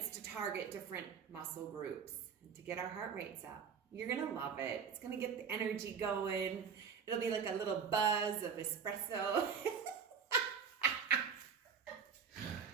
to target different muscle groups and to get our heart rates up. You're gonna love it. It's gonna get the energy going. It'll be like a little buzz of espresso.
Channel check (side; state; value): left; quieter; 6.7 dB